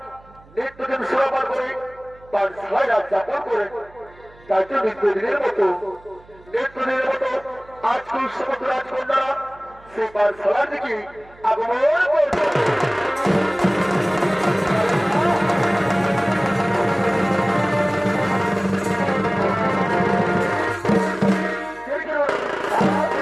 নিত্যদিন সুরাপান করে তার ছয় রাত যাপন করে তাই তো নিত্যদিনের মতো আজকাল সমস্ত রাজকন্যা সেই পাঠশালার দিকে আগমন করবে।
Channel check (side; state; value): right; noise; hum, 25 dB below the sound